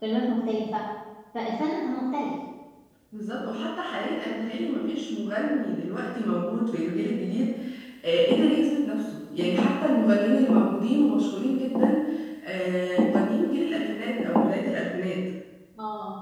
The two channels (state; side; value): identical; both; correlation 1.00